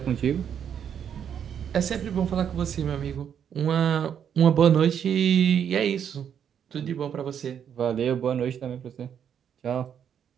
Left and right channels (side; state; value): left; quieter; 8.5 dB